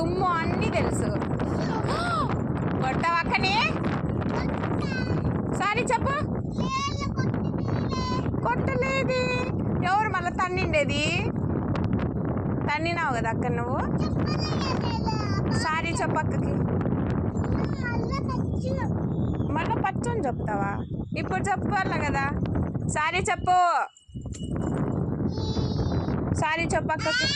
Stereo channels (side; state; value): both; identical; correlation 1.00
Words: అన్నీ తెలుసు. కొట్టావా అక్కని? సారీ చెప్పు. కొట్టలేదు. ఎవరు మళ్ళీ తన్నిండేది? తన్నినావు కదా అక్క నువ్వు. సారీ చెప్పు అక్కకి. మళ్ళీ పచ్చని చెప్తావా? ఇప్పుడు చెప్పాల కదా. సారీ చెప్పు. సారీ చెప్పు అక్కకి.